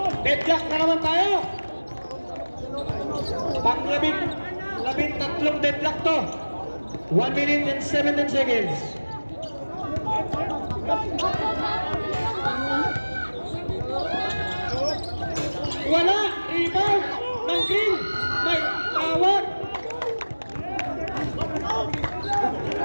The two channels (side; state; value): both; inverted; correlation -1.00